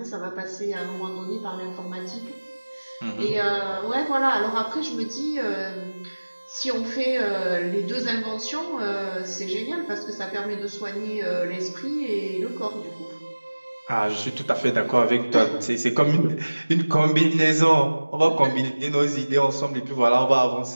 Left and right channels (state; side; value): inverted; both; correlation -1.00